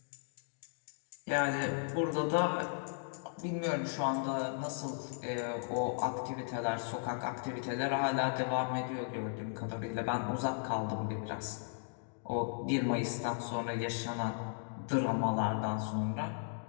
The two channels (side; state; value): right; silent; digital silence